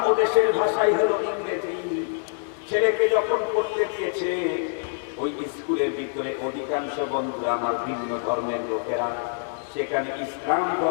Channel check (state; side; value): silent; right; 61 dB below the other